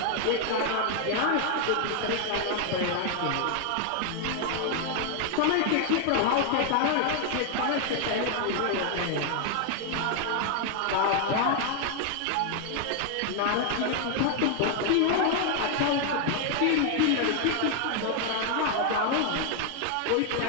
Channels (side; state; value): both; different; correlation 0.00